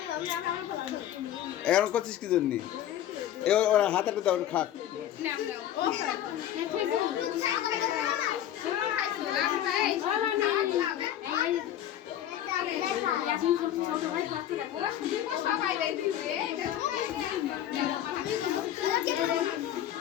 এখন করছিস কি জন্য ওরা হাতাটা দাও খাক সবাই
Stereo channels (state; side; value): quieter; right; 11.5 dB